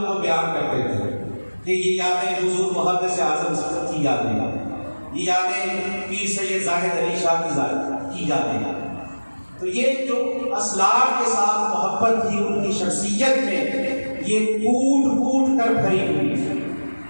کو بیان کرتے تھے کہ یہ یادیں حضور محدث اعظم کی یادیں، یہ یادیں پیر سید زاہد علی شاہ کی یادیں۔ تو یہ جو اسلاف کے ساتھ محبت تھی ان کی شخصیت میں، یہ کوٹ کوٹ کر بھری ہوئی ہے۔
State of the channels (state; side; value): inverted; both; correlation -1.00